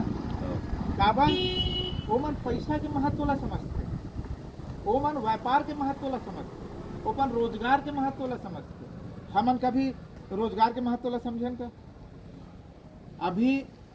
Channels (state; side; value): identical; both; correlation 1.00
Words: काबर वो मन पैसा के महत्व ला समझते, वो मन व्यापार के महत्व ला समझते, ओपन रोजगार के महत्व ला समझते। हमन कभी रोजगार के महत्व ला समझें का। अभी